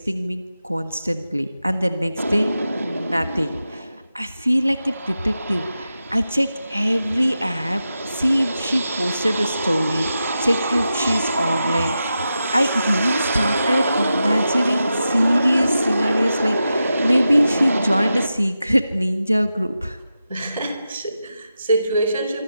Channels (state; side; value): inverted; both; correlation -0.90